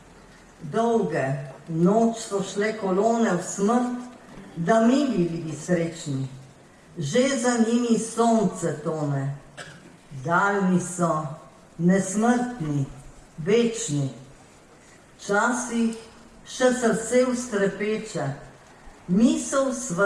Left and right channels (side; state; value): both; identical; correlation 1.00